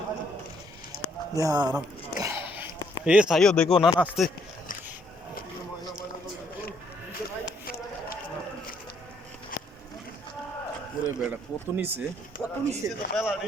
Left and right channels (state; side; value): normal; both; correlation 0.69